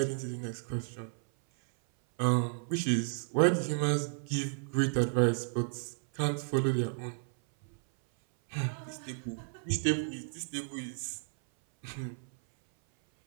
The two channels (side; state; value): left; silent; 56 dB below the other